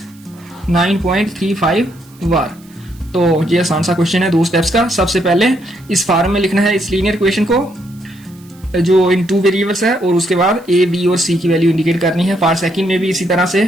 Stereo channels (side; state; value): right; noise; hiss, 28 dB below the sound